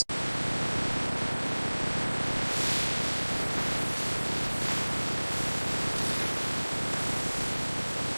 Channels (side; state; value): both; inverted; correlation -1.00